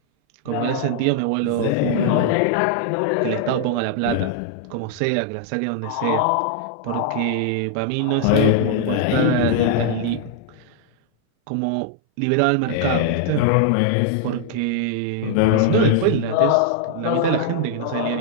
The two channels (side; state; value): both; different; correlation 0.00